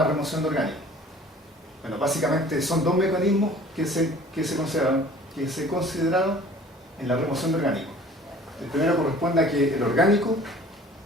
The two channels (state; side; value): normal; both; correlation 0.49